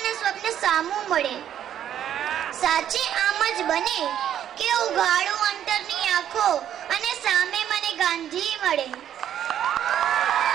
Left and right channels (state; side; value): quieter; left; 10.3 dB